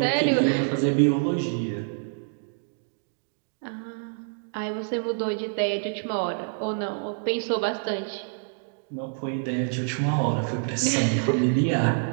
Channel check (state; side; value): silent; left; digital silence